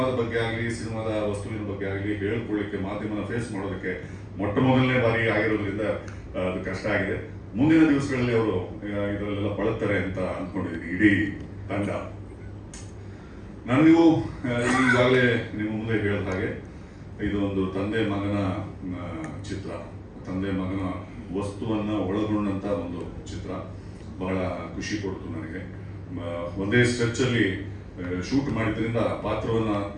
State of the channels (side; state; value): both; identical; correlation 1.00